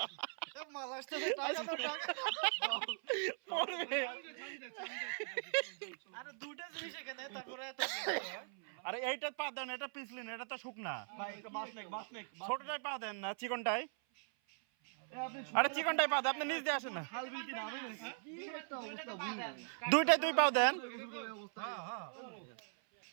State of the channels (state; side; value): silent; left; 51 dB below the other